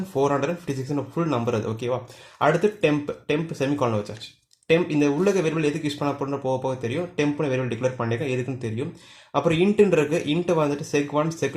ஃபுல் நம்பர் அது. ஓகேவா? அடுத்து டெம்ப் செமிகாலன் வச்சாச்சு. டெம்ப் இந்த உள்ளக வேரியபிள் எதுக்கு யூஸ் பண்ண போகிறோம் போக தெரியும். டெம்ப்னு வேரியபிள் டிக்ளேர் பண்ணியிருக்கேன், எதுக்குன்னு தெரியும். அப்புறம் இன்ட்டுன்னு இருக்கு. இன்ட்டு வந்துட்டு sec1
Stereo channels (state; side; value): identical; both; correlation 1.00